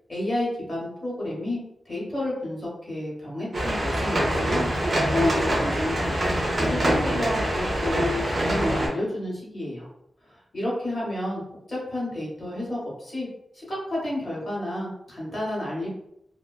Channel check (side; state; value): both; normal; correlation 0.90